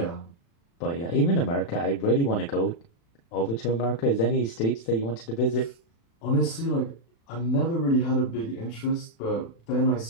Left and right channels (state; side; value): late; right; 36 ms